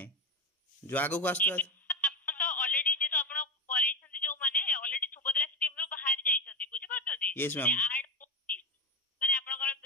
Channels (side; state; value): both; normal; correlation 0.15